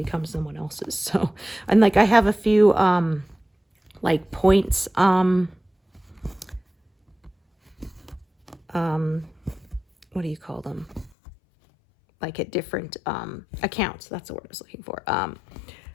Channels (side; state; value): right; drops out; at 11.1 s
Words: someone else's. So, and like I have a few like points what do you call them? Like at different accounts. That's the word I was looking for. I